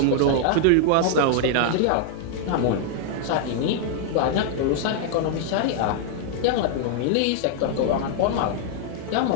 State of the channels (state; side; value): different; both; correlation 0.00